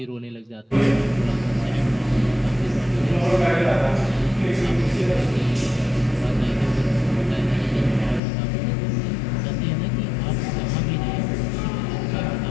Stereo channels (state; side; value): drops out; right; at 8.2 s